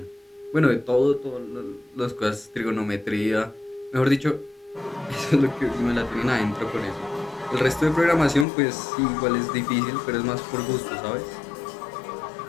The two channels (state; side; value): drops out; right; at 8.5 s